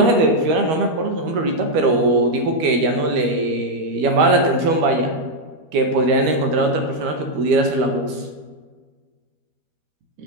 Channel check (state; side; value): late; left; 13 ms